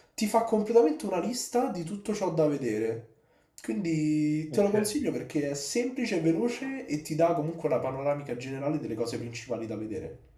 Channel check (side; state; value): both; identical; correlation 1.00